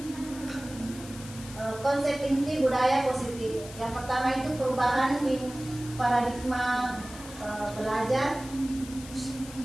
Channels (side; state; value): left; noise; hiss, 15 dB below the sound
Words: konsep inti budaya positif. Yang pertama itu perubahan paradigma belajar.